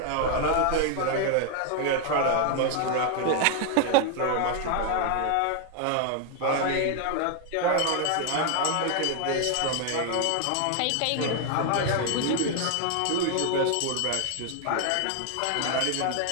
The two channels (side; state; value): both; different; correlation 0.00